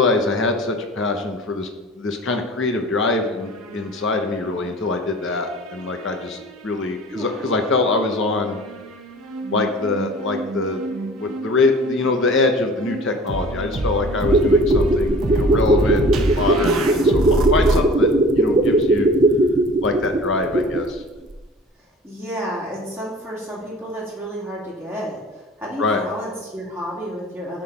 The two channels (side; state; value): both; normal; correlation 0.44